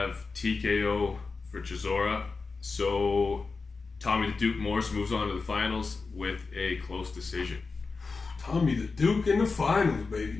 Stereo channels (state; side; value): quieter; right; 4.3 dB